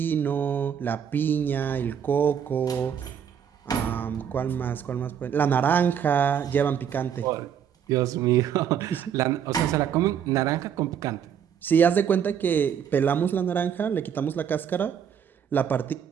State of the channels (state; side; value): quieter; left; 8.4 dB